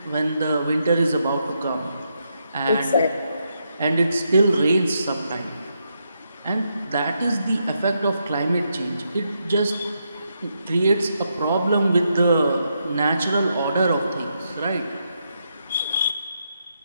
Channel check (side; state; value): both; inverted; correlation -0.81